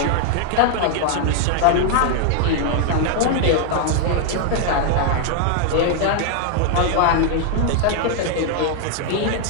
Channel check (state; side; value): different; both; correlation 0.00